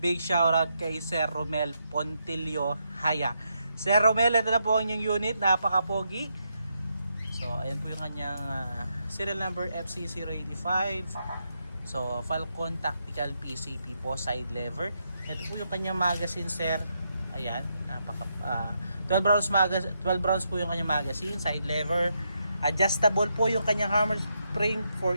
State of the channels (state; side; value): inverted; both; correlation -0.81